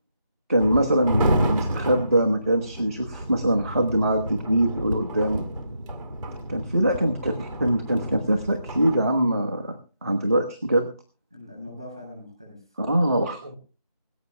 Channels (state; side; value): inverted; both; correlation -0.81